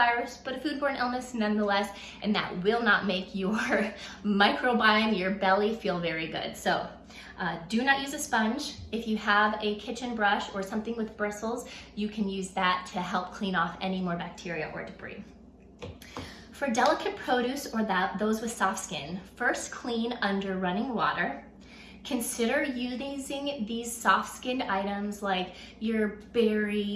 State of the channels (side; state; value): both; identical; correlation 1.00